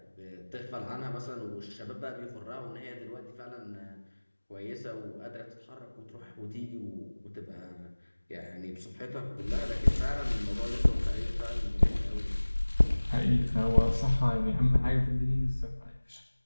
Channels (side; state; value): both; inverted; correlation -1.00